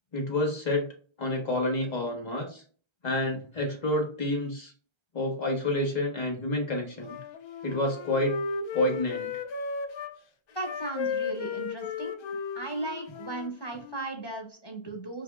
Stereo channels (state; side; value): late; right; 1.3 ms